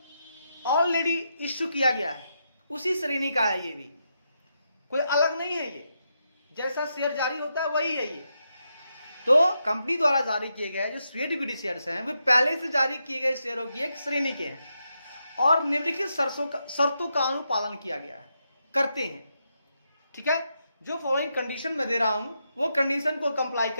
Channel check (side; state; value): both; inverted; correlation -0.83